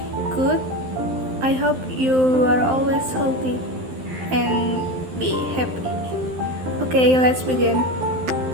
Good. I hope you are always healthy and be happy. Okay, let's begin.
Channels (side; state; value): left; late; 12 ms